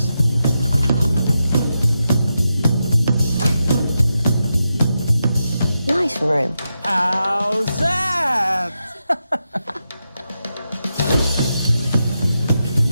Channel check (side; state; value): both; inverted; correlation -0.88